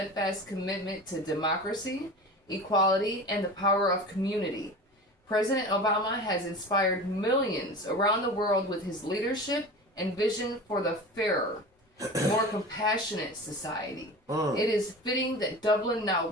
commitment to democracy, equality, and the power of community. President Obama has inspired millions around the world with his leadership and vision for the fairer, more compassionate society. It is fitting that Dublin now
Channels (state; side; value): normal; both; correlation 0.33